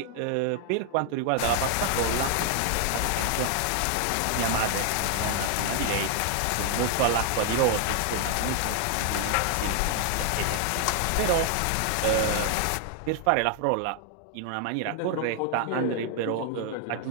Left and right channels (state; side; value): different; both; correlation 0.00